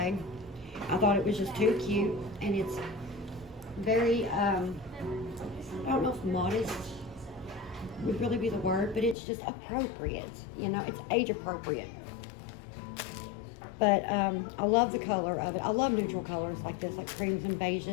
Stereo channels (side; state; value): right; drops out; at 9.2 s